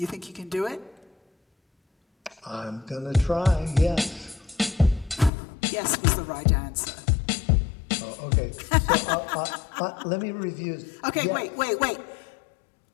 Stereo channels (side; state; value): right; drops out; at 5.3 s